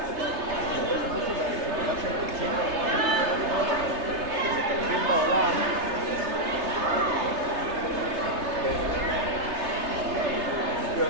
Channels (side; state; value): left; late; 3.3 ms